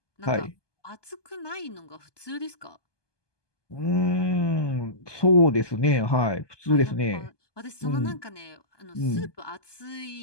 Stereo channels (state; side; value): late; right; 1.2 ms